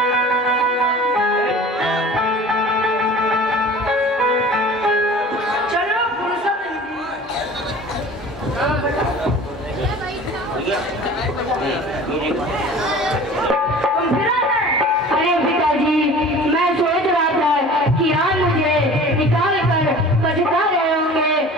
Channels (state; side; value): normal; both; correlation 0.42